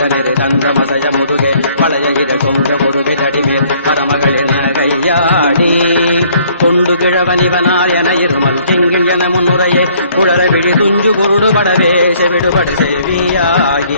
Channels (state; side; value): inverted; both; correlation -0.61